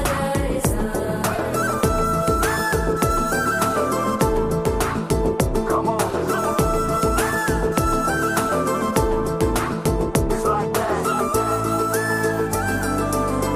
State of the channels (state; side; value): identical; both; correlation 1.00